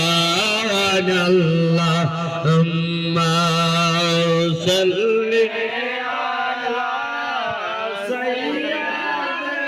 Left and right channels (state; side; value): identical; both; correlation 1.00